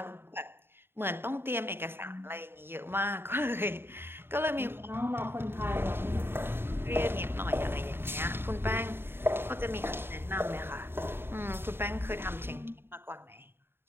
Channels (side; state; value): left; late; 0.11 ms